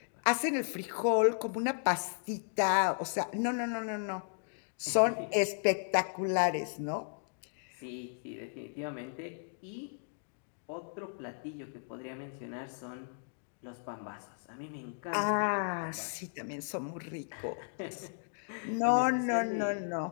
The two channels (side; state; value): right; silent; digital silence